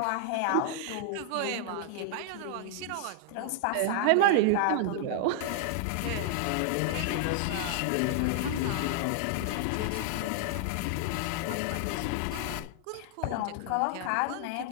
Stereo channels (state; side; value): different; both; correlation -0.01